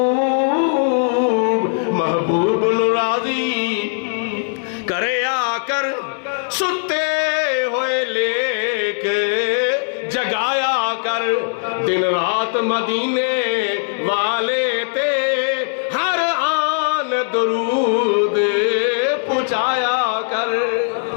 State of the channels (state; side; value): silent; right; 66 dB below the other